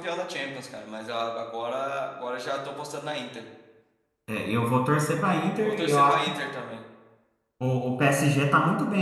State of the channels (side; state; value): both; identical; correlation 1.00